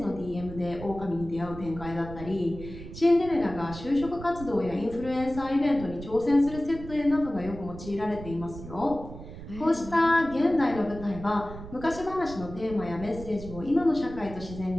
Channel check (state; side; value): noise; right; rumble, 13 dB below the sound